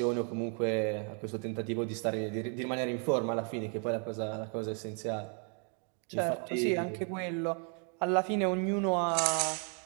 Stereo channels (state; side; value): quieter; left; 39.7 dB